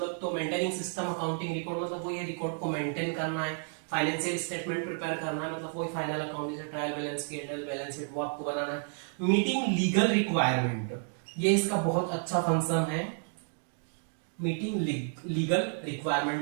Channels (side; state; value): left; silent; 55 dB below the other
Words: तो मेंटेनिंग सिस्टम अकाउंटिंग रिकॉर्ड, मतलब वही है रिकॉर्ड को मेंटेन करना है। फाइनेंशियल स्टेटमेंट प्रिपेयर करना है, मतलब वही फाइनल अकाउंट, जैसे ट्रायल बैलेंस की बैलेंस शीट, वो आपको बनाना है। मीटिंग लीगल रिक्वायरमेंट, ये इसका बहुत अच्छा फंक्शन है। Meeting legal requirement,